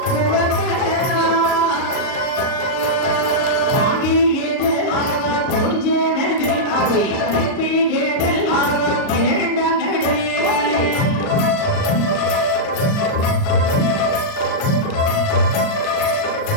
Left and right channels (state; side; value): late; right; 38 ms